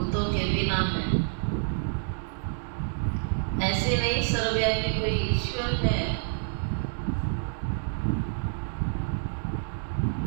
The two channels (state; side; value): silent; left; 59 dB below the other